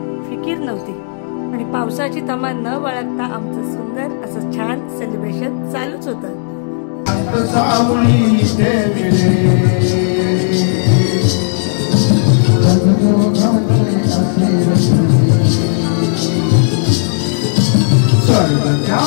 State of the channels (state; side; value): silent; right; digital silence